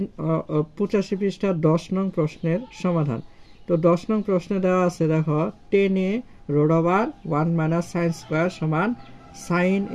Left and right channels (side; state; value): both; identical; correlation 1.00